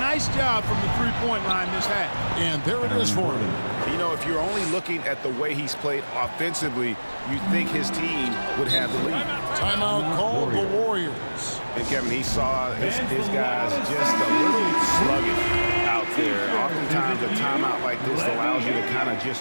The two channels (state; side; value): inverted; both; correlation -1.00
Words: job from the three-point line this half. And there it is for him. You know, if you're only looking at the way he's played offensively, you'd think his team would have the lead. Timeout called the Warriors. And Kevin, he saw his guys just a little sluggish out there. Oftentimes a timeout like this allows you to kind of